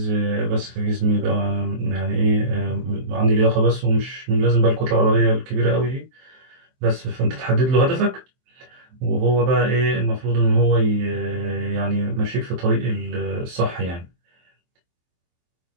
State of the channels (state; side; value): late; left; 23 ms